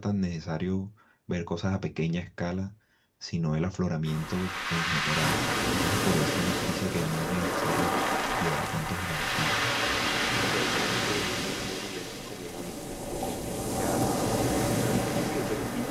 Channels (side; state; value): both; identical; correlation 1.00